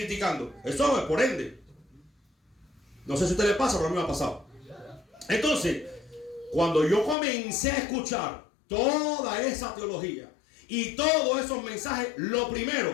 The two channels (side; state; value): right; drops out; at 7.2 s